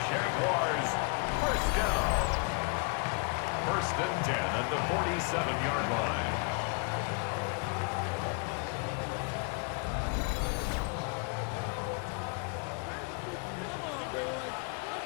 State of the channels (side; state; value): right; quieter; 35.6 dB